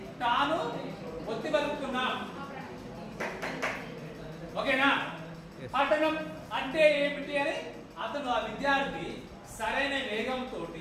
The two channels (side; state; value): both; identical; correlation 1.00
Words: తాను ఒత్తి బతుకుతున్నాం. ఓకేనా? పఠనం అంటే ఏమిటి అని అతను ఆ విద్యార్థి సరైన వేగంతో